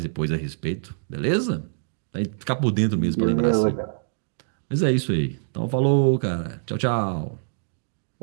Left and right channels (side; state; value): left; silent; digital silence